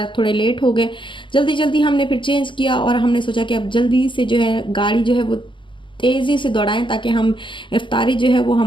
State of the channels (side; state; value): right; late; 0.24 ms